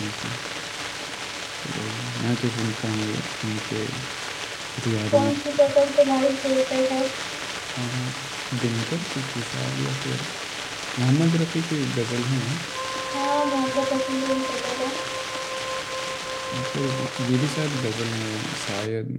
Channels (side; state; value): both; identical; correlation 1.00